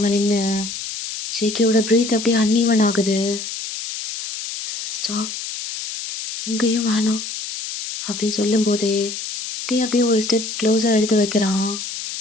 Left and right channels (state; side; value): noise; left; hiss, 7 dB below the sound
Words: நின்று. ஜேகேவோட ப்ரீத் அப்படியே அன்ஈவன் ஆகுது. ஸ்டாப், இங்கேயும் வேணாம் அப்படின்னு சொல்லும்போதே அப்படியே ஒரு ஸ்டெப் க்ளோஸாக எடுத்து வைக்கிறான்.